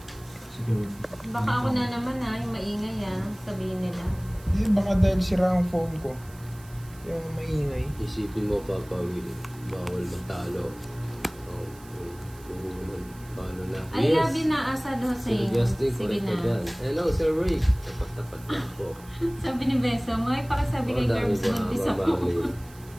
Siguro. Baka ako na naman yung maingay sabihin nila. Eh, baka dahil sira ang phone ko. Yung maingay. Isipin mo, Papa Will, bawal matalo. Oh, paano na? I love you na, Asad Sir Hussein. Justin, Sige correct ka na. dyan. Hello, Sir Rick. Tapat-tapat na po. Sabi ni Beso, may pakisabi kay Dami Curbs ba, buntis Ma'am ako. Marlene?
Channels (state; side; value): noise; right; hiss, 23 dB below the sound